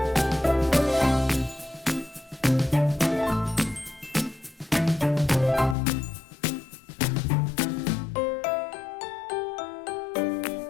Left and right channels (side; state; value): right; drops out; at 5.8 s